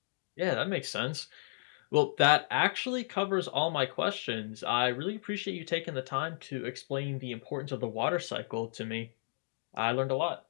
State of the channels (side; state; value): right; silent; digital silence